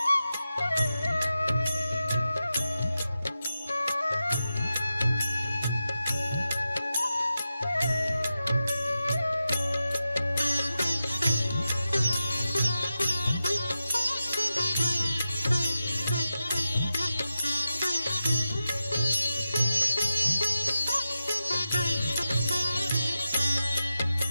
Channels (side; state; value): both; inverted; correlation -0.91